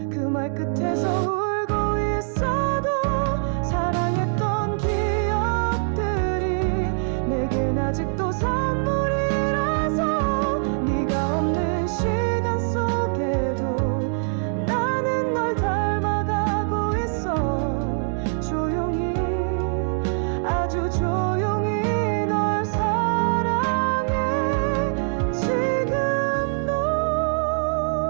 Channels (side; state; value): left; silent; 63 dB below the other